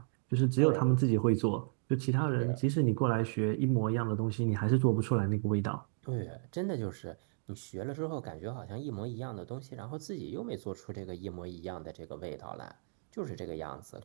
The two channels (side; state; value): left; silent; digital silence